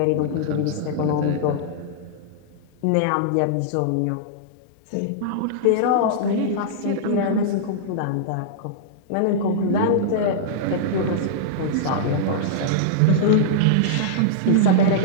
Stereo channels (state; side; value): different; both; correlation -0.02